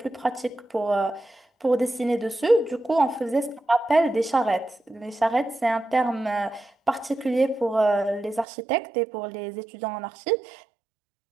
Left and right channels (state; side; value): drops out; left; at 8.5 s